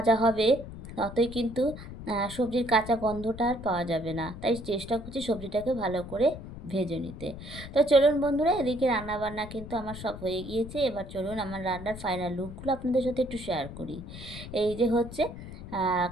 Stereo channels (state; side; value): noise; left; rumble, 12 dB below the sound